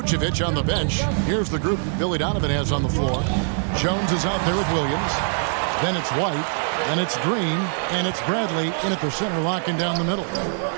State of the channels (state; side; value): silent; left; digital silence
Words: on the bench, here's the group that Billy Donovan has on the floor. Jones is out there with Williams. Then it's White. Then it's Green. And it's Bradley in at the center, locking down the middle.